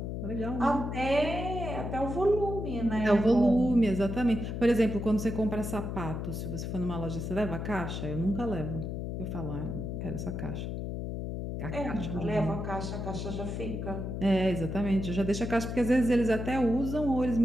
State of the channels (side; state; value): left; noise; hum, 4 dB below the sound